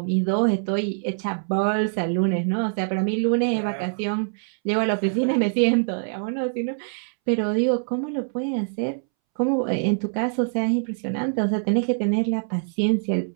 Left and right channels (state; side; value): silent; left; 63 dB below the other